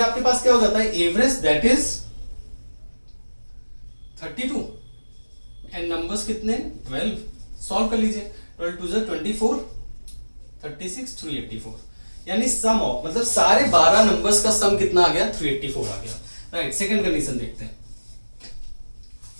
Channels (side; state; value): both; inverted; correlation -1.00